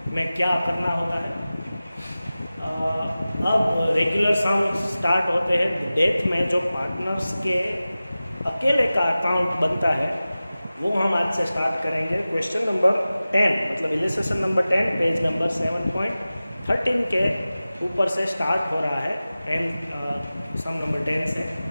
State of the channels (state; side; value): inverted; both; correlation -0.96